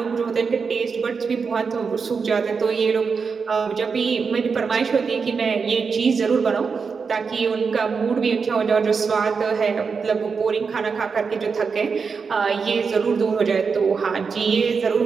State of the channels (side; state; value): left; quieter; 5.4 dB